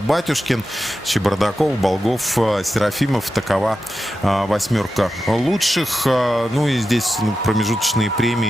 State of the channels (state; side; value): normal; both; correlation 0.91